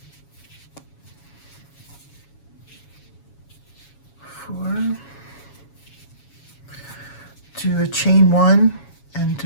4. Do a chain 1 and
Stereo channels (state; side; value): late; right; 7.2 ms